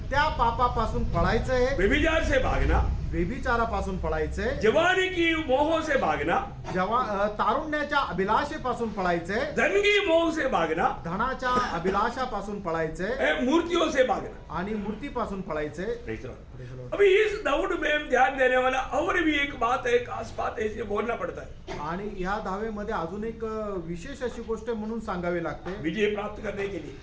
त्या पापापासून पळायचं आहे. व्यभिचार से भागना, व्यभिचारापासून पळायचंय. जवानी की मोह से भागना, तारुण्याच्या अभिलाषेपासून पळायचंय. धन की मोह से भागना, धनाच्या अभिलाषापासून पळायचंय. मूर्तियों से भागना. आणि मूर्तीपासून पळायचंय. Praise the Lord. अभी इस दौड़ में हम ध्यान देने वाला और भी एक बात है, खास बात है, इसे बोलना पड़ता है. आणि ह्या धावेमध्ये अजून एक विशेष अशी गोष्ट म्हणून सांगावी लागते. विजय प्राप्त करने के लिए.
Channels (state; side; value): identical; both; correlation 1.00